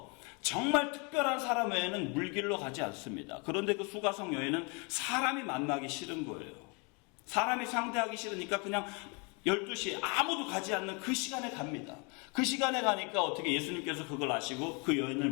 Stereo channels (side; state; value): right; quieter; 32.4 dB